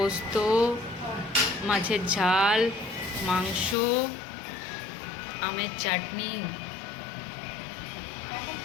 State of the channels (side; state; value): right; drops out; at 3.8 s